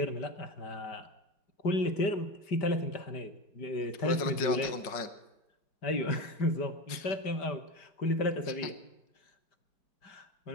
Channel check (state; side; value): late; right; 5.4 ms